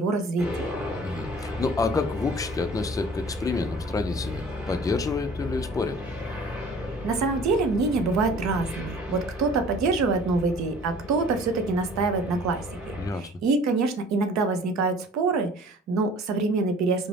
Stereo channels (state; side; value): normal; both; correlation 0.48